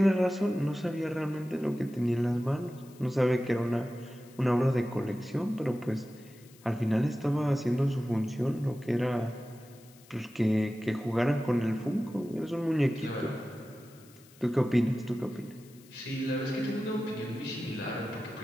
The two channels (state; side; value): noise; left; hiss, 25 dB below the sound